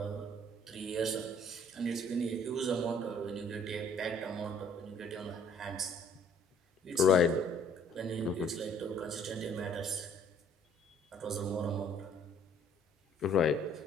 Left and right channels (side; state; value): both; normal; correlation 0.58